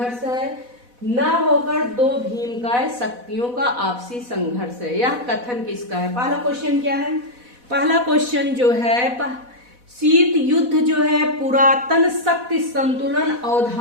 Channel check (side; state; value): left; late; 4.1 ms